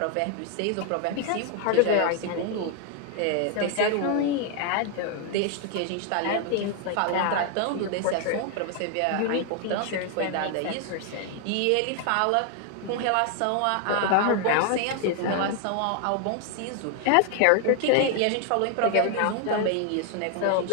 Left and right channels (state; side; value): different; both; correlation 0.00